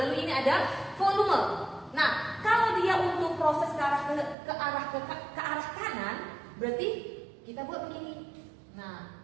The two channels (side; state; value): left; drops out; at 4.4 s